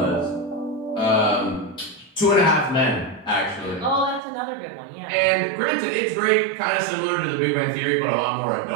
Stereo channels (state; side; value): drops out; left; at 4.2 s